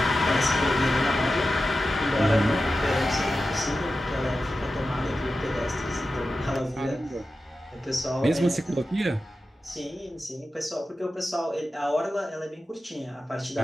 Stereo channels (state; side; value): normal; both; correlation 0.93